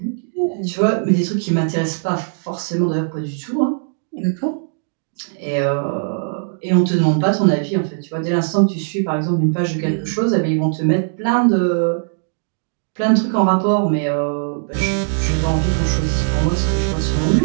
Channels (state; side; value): silent; left; digital silence